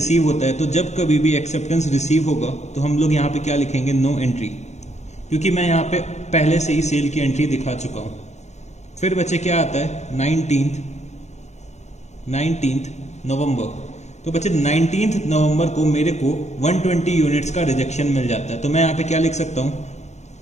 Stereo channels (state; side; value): late; right; 0.33 ms